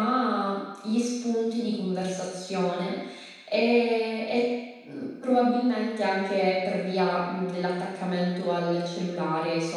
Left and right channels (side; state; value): both; identical; correlation 1.00